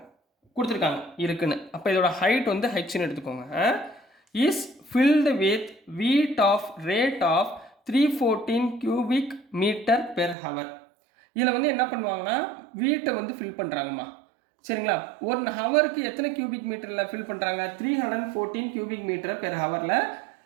கொடுத்துருக்காங்க இருக்குன்னு. அப்போ இதோட ஹைட் வந்து ஹெச்னு எடுத்துக்கோங்க. Is filled with weight of rate of 314 cubic meter per hour. இதில் வந்து என்ன பண்ணுவாங்கன்னா வீட்டை வந்து ஃபில் பண்ணுறாங்கம்மா. சரிங்களா, 1 ஹவருக்கு எத்தனை கியூபிக் மீட்டரில் ஃபில் பண்ணுறாங்க? 314 cubic meter per ஹவரில்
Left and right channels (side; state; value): left; drops out; at 10.4 s